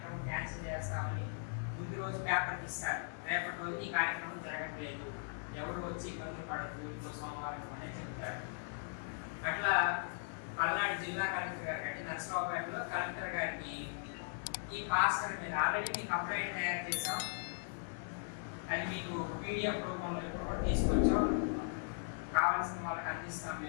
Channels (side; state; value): right; silent; digital silence